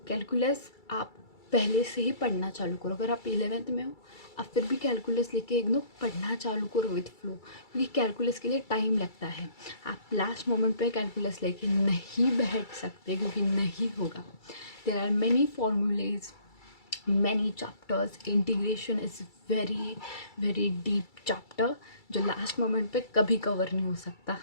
calculus आप पहले से ही पढ़ना चालू करो। अगर आप 11th में हो, आप फिर भी कैलकुलस लेके एकदम पढ़ना चालू करो विथ फ्लो, क्योंकि कैलकुलस के लिए टाइम लगता है। आप लास्ट मोमेंट पे कैलकुलस लेके नहीं बैठ सकते, क्योंकि नहीं होगा। There are many formulas, many chapters. Integration is very very deep chapter जो लास्ट मोमेंट पे कभी कवर नहीं हो सकता,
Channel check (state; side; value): late; right; 2.3 ms